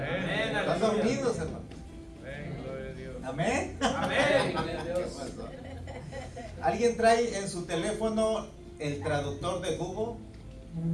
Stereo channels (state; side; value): identical; both; correlation 1.00